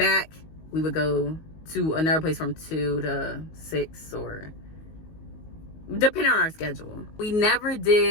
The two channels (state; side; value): late; right; 19 ms